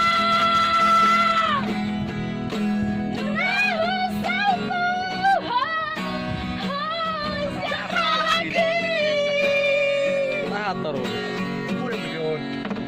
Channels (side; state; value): both; identical; correlation 1.00